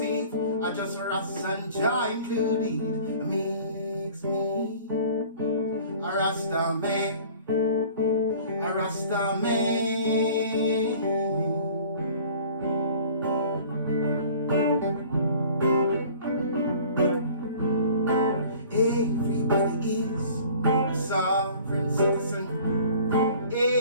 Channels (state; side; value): inverted; both; correlation -0.49